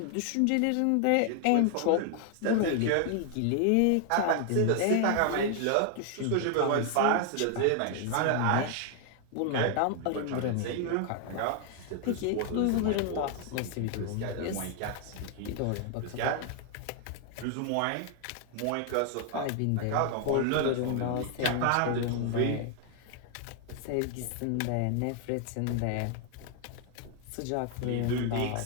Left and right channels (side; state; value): both; different; correlation 0.00